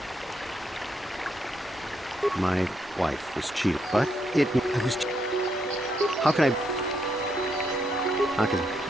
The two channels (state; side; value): normal; both; correlation 0.77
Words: My wife was cheated, but I was... How can I... Because